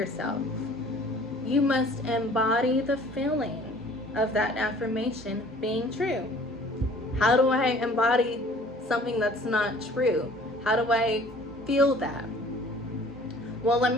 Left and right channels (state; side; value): normal; both; correlation 0.51